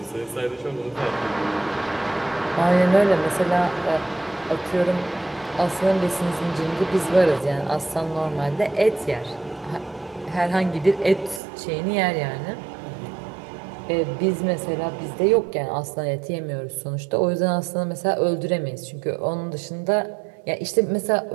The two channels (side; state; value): left; drops out; at 11.4 s